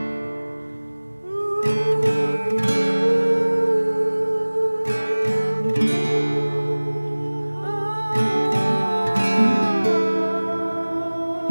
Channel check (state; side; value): inverted; both; correlation -1.00